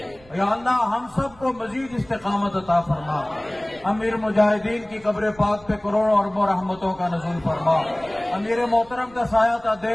یا اللہ ہم سب کو مزید استقامت عطا فرما. امیر مجاہدین کی قبر پاک پہ کروڑوں اربوں رحمتوں کا نزول فرما. امیر محترم کا سایہ تا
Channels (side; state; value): right; noise; rumble, 25 dB below the sound